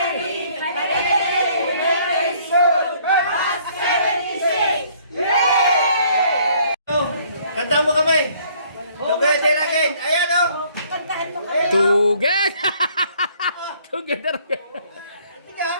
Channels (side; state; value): both; inverted; correlation -0.61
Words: Kanta mo kami. Together again. Ayan o. Together! Together again.